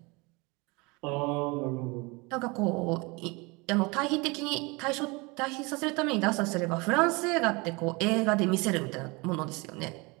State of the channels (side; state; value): left; quieter; 26.7 dB